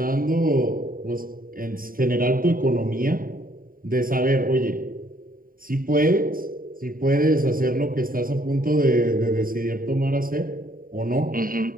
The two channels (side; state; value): left; late; 0.41 ms